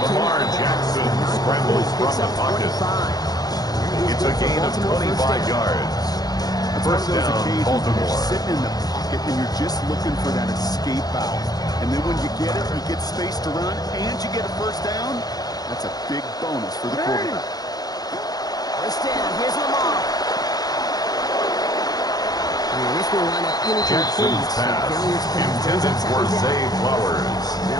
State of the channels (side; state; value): right; late; 0.19 ms